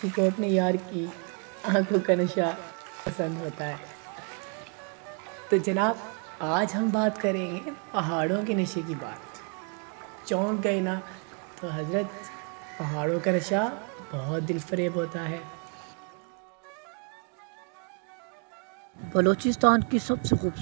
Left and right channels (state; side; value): quieter; left; 38.7 dB